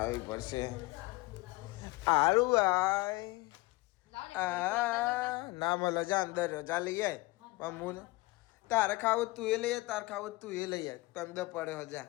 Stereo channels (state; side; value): quieter; right; 21.7 dB